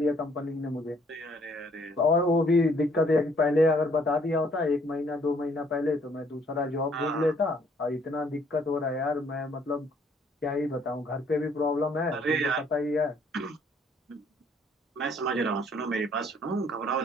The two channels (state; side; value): normal; both; correlation 0.64